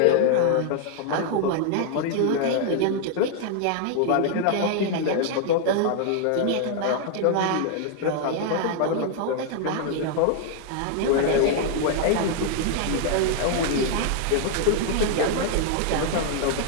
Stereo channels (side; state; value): both; different; correlation 0.00